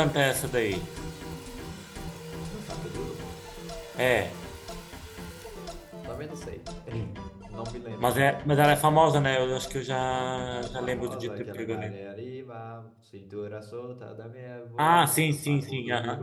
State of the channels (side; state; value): both; identical; correlation 1.00